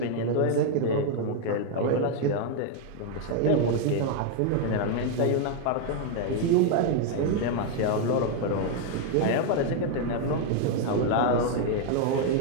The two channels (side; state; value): both; different; correlation 0.01